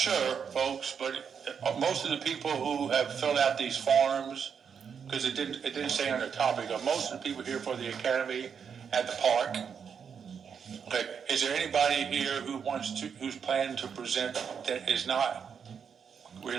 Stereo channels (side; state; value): left; quieter; 6.9 dB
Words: folks, but most of the people who have filled out these forms, because it didn't say on the topic, most of the people here for the academy at the park. Okay, is there anybody here who's planning to present that is not